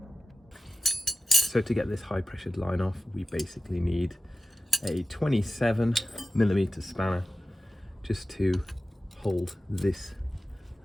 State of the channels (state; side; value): normal; both; correlation 0.94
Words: So to get this high pressured line off, we basically need a 27mm spanner just to hold this